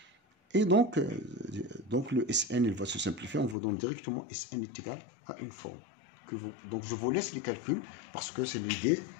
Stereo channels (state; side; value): drops out; right; at 3.6 s